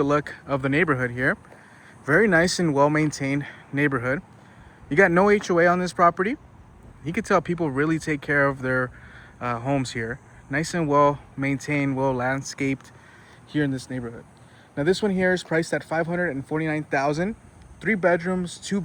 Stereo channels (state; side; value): identical; both; correlation 1.00